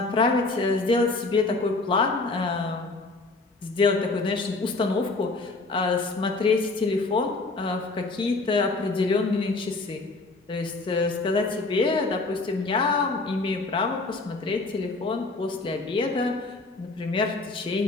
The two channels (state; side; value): quieter; right; 3.4 dB